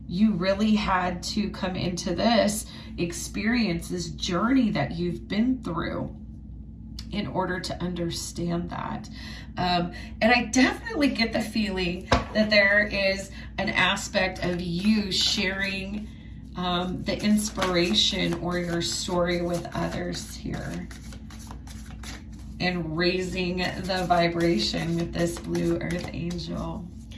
you really had to come into this experience, this journey that you've been through, in order to understand that. And I definitely get the feeling that there is an aspect of you sharing the inspiration or your story with others here, and raising the vibration with this Blue Earth Angel.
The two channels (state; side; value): identical; both; correlation 1.00